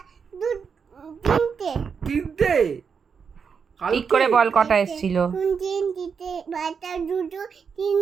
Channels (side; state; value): left; quieter; 6.2 dB